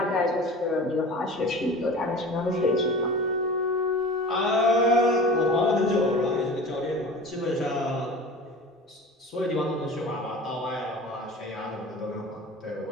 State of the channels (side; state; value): both; normal; correlation 0.37